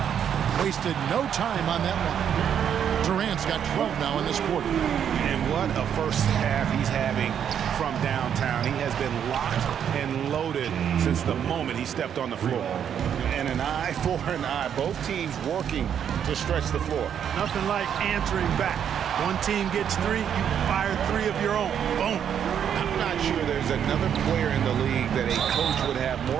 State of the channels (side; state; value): left; quieter; 8.7 dB